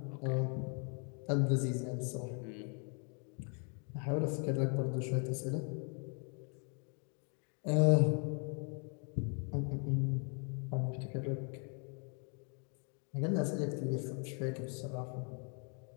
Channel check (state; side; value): quieter; right; 39.7 dB